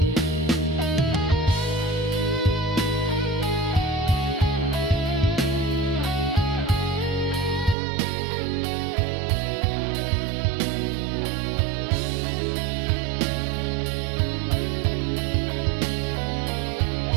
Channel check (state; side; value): drops out; left; at 7.8 s